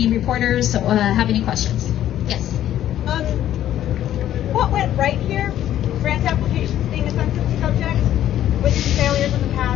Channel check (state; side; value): quieter; right; 11.9 dB